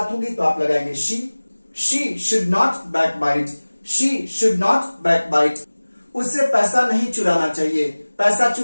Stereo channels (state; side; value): inverted; both; correlation -1.00